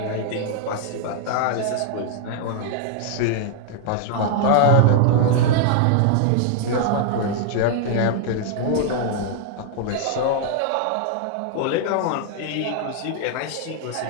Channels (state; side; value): different; both; correlation -0.01